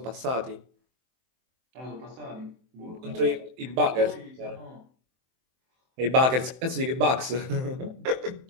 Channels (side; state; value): left; late; 23 ms